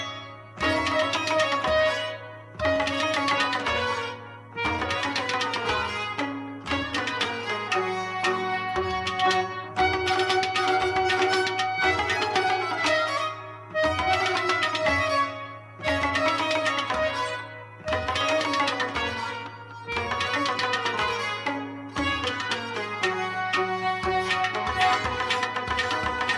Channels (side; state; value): both; identical; correlation 1.00